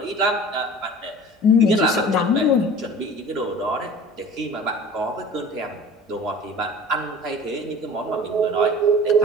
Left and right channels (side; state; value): both; normal; correlation 0.42